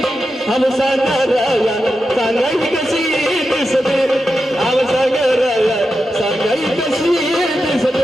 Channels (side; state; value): both; normal; correlation 0.89